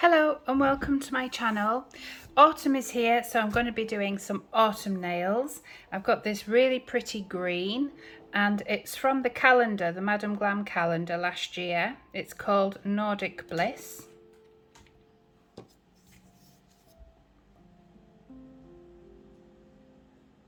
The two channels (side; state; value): both; identical; correlation 1.00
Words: Hello and welcome to my channel. Autumn is here, so I'm going to be doing some autumn nails. I've got this really pretty green and it's from the calendar, the Madam Glam calendar last year. It's called Nordic Bliss.